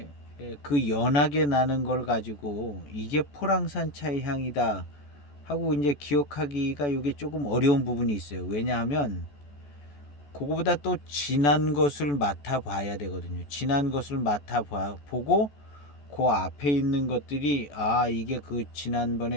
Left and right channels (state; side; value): late; right; 14 ms